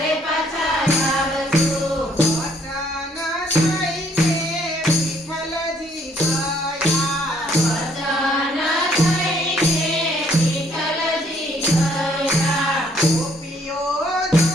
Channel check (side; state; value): both; normal; correlation 0.65